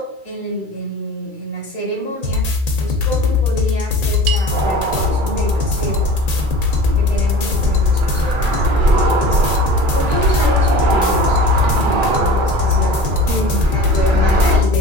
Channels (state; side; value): late; left; 2.3 ms